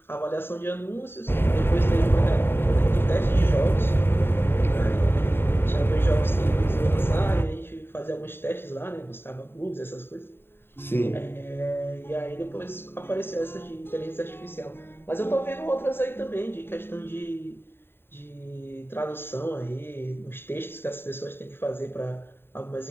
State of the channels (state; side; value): late; right; 0.11 ms